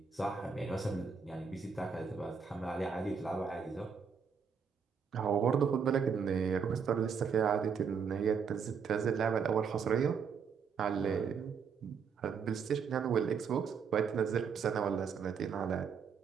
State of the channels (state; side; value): quieter; left; 6.3 dB